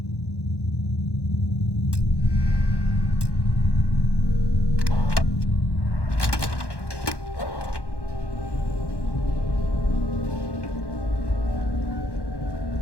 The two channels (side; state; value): right; late; 1.1 ms